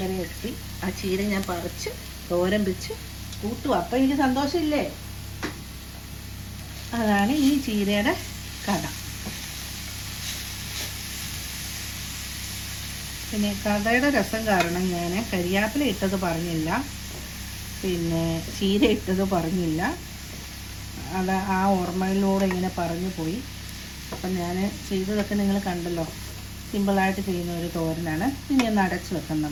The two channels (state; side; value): identical; both; correlation 1.00